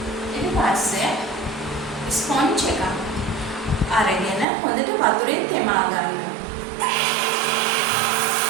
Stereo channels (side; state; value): left; drops out; at 4.5 s